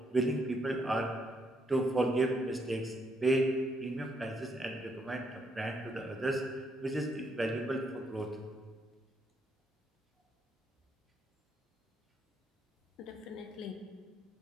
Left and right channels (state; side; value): normal; both; correlation 0.75